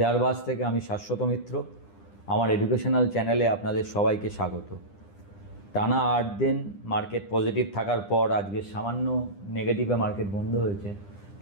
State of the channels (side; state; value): right; late; 9.9 ms